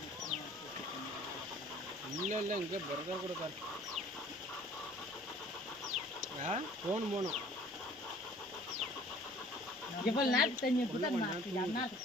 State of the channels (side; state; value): left; noise; rumble, 29 dB below the sound